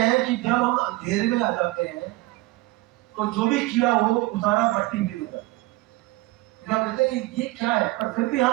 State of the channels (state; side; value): quieter; left; 20.0 dB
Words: कि जब हम अंधेरे में आ जाते हैं तो जो भी किया वो सारा मट्टी में होता है। हम कहते हैं ये क्या है, पर फिर भी